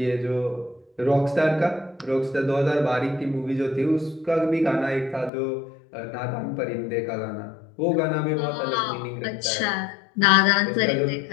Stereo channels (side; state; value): right; drops out; at 5.3 s